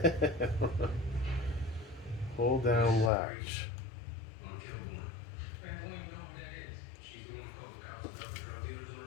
Hold down latch.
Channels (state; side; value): drops out; right; at 3.1 s